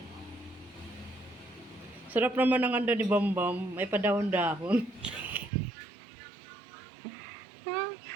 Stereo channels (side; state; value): left; drops out; at 5.5 s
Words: Sarap naman ang ando ni Bam Bam. May padahon-dahon.